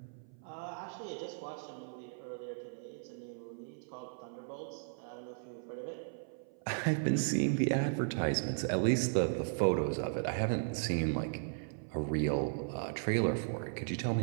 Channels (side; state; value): left; silent; 54 dB below the other